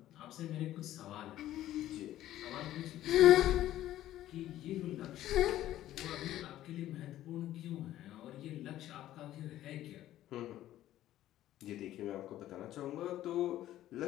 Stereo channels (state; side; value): quieter; right; 13.5 dB